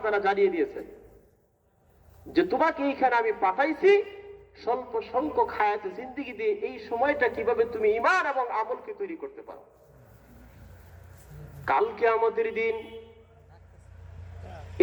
তাআলা জানিয়ে দিয়েছেন যে তোমাকে এইখানে আমি পাঠাইছি স্বল্প সংখ্যক হায়াতে জিন্দেগি দিয়ে এই সময়টা কিভাবে তুমি ঈমান এবং আমলকে তৈরি করতে পারো। কাল কিয়ামতের দিন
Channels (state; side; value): identical; both; correlation 1.00